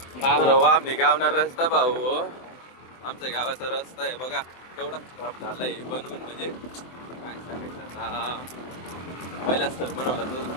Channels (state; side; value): late; right; 24 ms